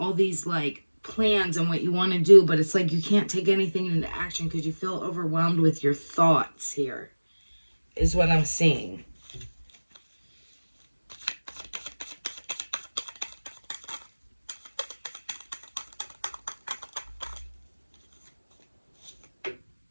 these plans and what you want to do, but it's like you can't take anything into action because you feel overwhelmed with your thoughts here, is what I'm seeing.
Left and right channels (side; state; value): both; inverted; correlation -1.00